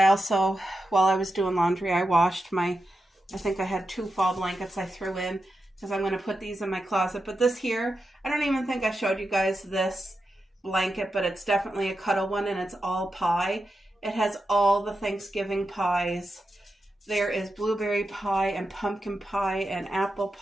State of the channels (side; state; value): both; normal; correlation 0.89